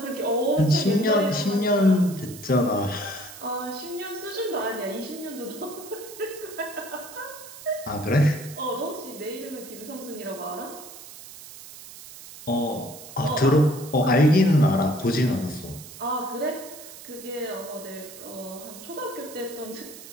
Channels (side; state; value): right; noise; hiss, 15 dB below the sound